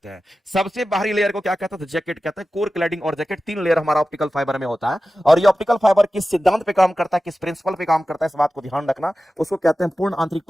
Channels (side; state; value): both; normal; correlation 0.94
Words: हैं। सबसे बाहरी लेयर को क्या कहते हैं, तो जैकेट कहते हैं। कोर, क्लैडिंग और जैकेट 3 लेयर हमारा ऑप्टिकल फाइबर में होता है। और ये ऑप्टिकल फाइबर किस सिद्धांत पे काम करता है, किस प्रिंसिपल पे काम करता है, इस बात को ध्यान रखना। उसको कहते हैं पूर्ण आंतरिक